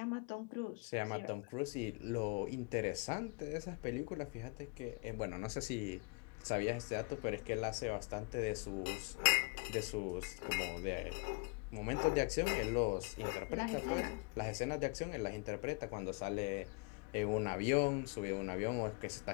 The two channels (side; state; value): right; quieter; 29.5 dB